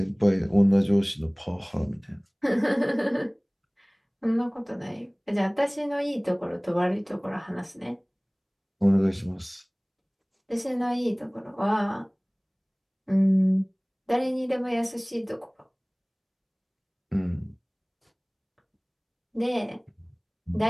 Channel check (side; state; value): both; identical; correlation 1.00